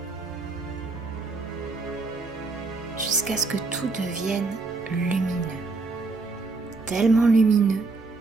Jusqu'à ce que tout devienne lumineux. Tellement lumineux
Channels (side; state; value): left; quieter; 3.8 dB